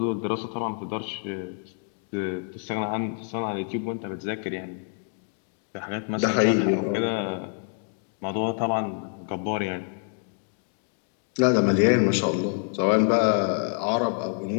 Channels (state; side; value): silent; right; 55 dB below the other